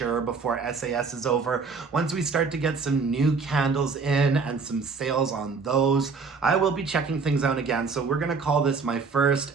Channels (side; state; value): left; quieter; 4.8 dB